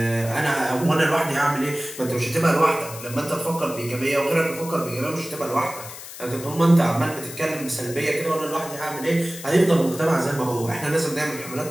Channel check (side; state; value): left; noise; hiss, 13 dB below the sound